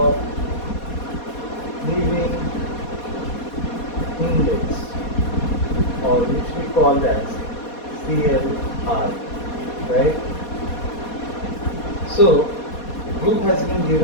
living index, or which we call as CLI, right? So group has been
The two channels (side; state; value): right; late; 4.2 ms